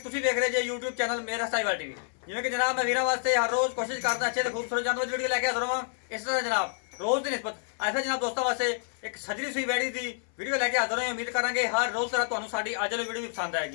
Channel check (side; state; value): right; silent; 59 dB below the other